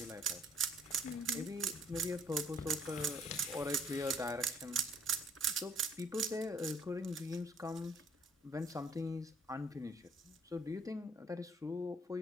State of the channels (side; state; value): both; normal; correlation 0.60